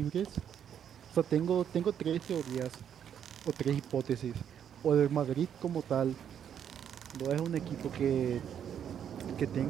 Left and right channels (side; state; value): left; quieter; 8.9 dB